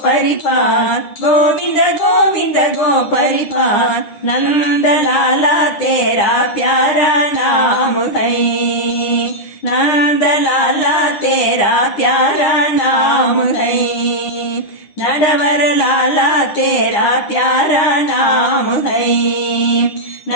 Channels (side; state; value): right; late; 9.9 ms